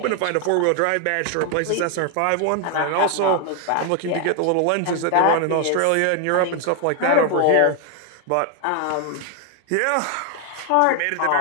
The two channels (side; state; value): both; different; correlation 0.01